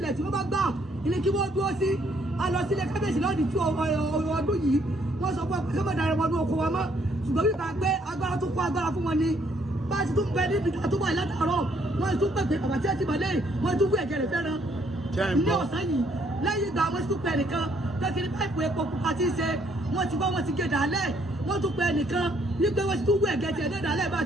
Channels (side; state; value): both; normal; correlation 0.68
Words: tí wọ́n bá gbà ní kí wọ́n dúró sí a lọ sílé kábíyèsí lọ́ọ̀dì tí ọdún yìí wọ́n sọ pé kí wọ́n darí wọn ní oko wọn mọ́ ṣùgbọ́n bí bá gbé agbára tó kó agbára fún wọn ni bá a ti tún bẹ níbi tó wà látàárọ̀ wọ́n tún pèpè àbàtí àti ìmọ̀lẹ́ wọ́n tún kú ẹ̀jẹ̀ rẹ̀ fẹ́ràn ní ọ̀sán yìí lẹ́yìn ìgbà wọ́n tún pẹ̀ nìkan tẹ́kiri páìpù epo pupa tí ń ṣe wọ́n ti gbọ́ wọ́n ti gé dàálẹ̀ wọ́n tún pẹ̀ nìkan wípé wọ́n ti tún wú ẹ̀gẹ́ tiẹ̀ ní dàálẹ̀ bá